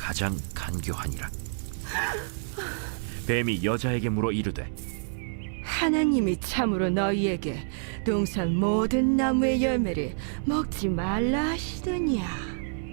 간교하니라. 뱀이 여자에게 물어 이르되 하나님이 참으로 너희에게 동산 모든 나무의 열매를 먹지 말라 하시더냐.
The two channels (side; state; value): left; silent; digital silence